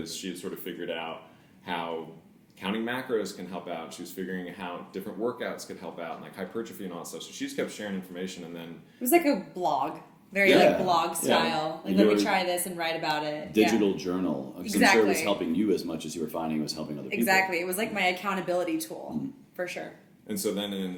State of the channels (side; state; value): both; identical; correlation 1.00